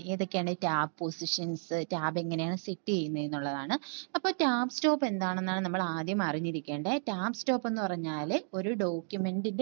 ഏതൊക്കെയാണ് ടാബ് പൊസിഷൻസ്, ടാബ് എങ്ങനെയാണ് സെറ്റ് ചെയ്യുന്നത് എന്നുള്ളതാണ്. അപ്പോൾ ടാബ് സ്റ്റോപ്പ് എന്താണെന്നാണ് നമ്മൾ ആദ്യം അറിഞ്ഞിരിക്കേണ്ടത്. ടാബ് സ്റ്റോപ്പ് എന്ന് പറഞ്ഞാൽ ഒരു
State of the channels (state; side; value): silent; left; 56 dB below the other